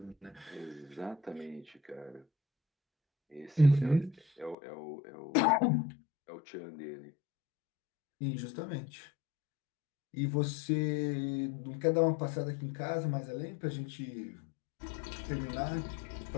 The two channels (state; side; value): drops out; right; at 4.5 s